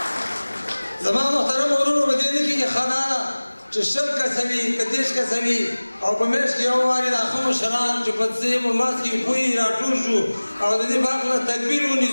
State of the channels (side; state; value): both; inverted; correlation -1.00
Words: زما محترم ورونو په دې نه کېږي ښه دا ده چې 100 کسه وي که 30 کسه وي او په میاشت کې یو وارې دا ښه مشران چې په څه په منځ کې پوهې راټول شو او د دې باغ نه تدبیر